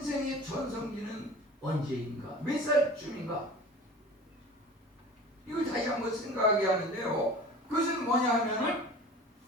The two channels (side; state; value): both; normal; correlation 0.39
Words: 전성기는 언제인가 몇 살쯤인가 이걸 다시 한번 생각하게 하는데요. 그것은 뭐냐 하면은